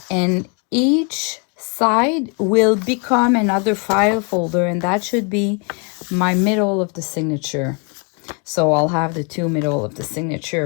and each side will become another file folder, and that should be my middle of the signature. So I'll have the 2 middle of the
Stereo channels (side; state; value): right; quieter; 35.6 dB